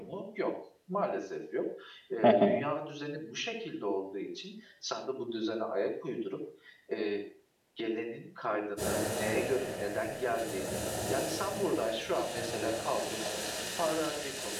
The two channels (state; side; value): identical; both; correlation 1.00